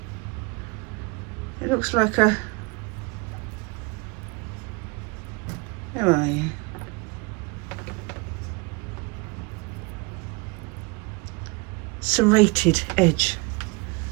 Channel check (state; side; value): quieter; left; 26.6 dB